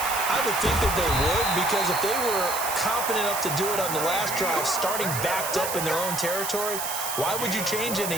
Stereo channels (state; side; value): noise; right; hiss, 4 dB below the sound